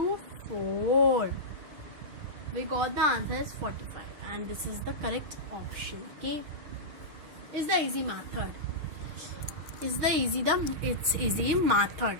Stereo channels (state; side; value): late; left; 6.2 ms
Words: 4. We got the answer is 45 and this is the correct option. Okay. Is the easy method. It's easy